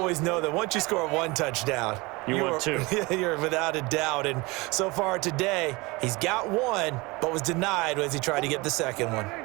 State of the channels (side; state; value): left; quieter; 24.1 dB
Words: know that once you score 1 touchdown, you want 2. You're without a doubt. And so far today, he's got 1, but was denied as he tried to get the 2nd one.